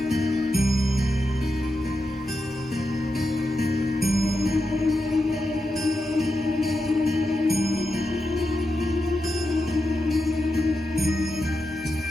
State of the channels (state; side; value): normal; both; correlation 0.88